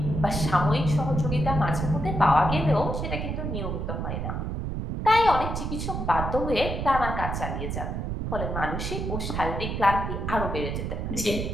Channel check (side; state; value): right; noise; rumble, 3 dB below the sound